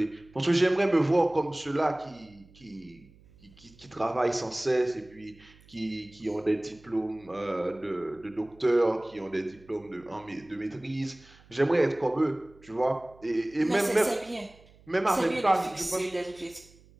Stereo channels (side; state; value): right; noise; hum, 26 dB below the sound